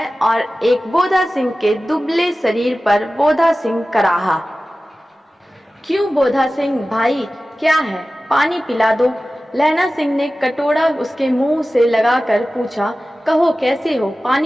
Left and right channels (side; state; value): both; normal; correlation 0.96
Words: और एक बोधा सिंह के दुबले शरीर पर बोधा सिंह कराहा। क्यों बोधा सिंह भाई, क्या है? पानी पिला दो। लहना सिंह ने कटोरा उसके मुंह से लगाकर पूछा। कहो कैसे हो?